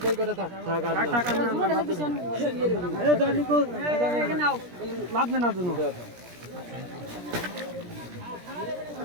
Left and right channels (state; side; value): late; left; 17 ms